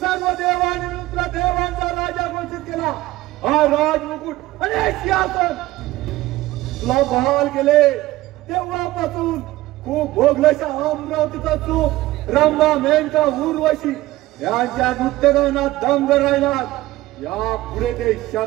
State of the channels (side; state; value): left; quieter; 17.3 dB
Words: देवांनी मित्र देवांचा राजा घोषित केला. हा राजमुकुट आणि हे सिंहासन तुला बहाल केले तेव्हापासून खूप भोगल्याच्या अमरावतीचा चूक रंभा, मेनका, उर्वशी यांच्या नृत्यगानात दंग राहिला. या पुढे ते